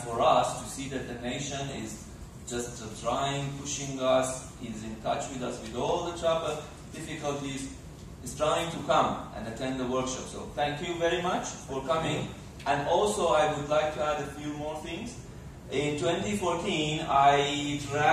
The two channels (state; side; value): identical; both; correlation 1.00